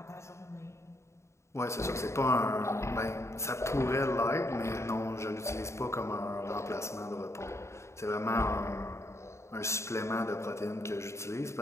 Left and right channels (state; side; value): late; right; 0.14 ms